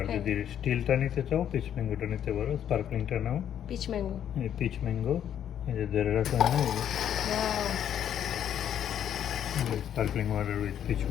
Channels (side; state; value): right; quieter; 9.8 dB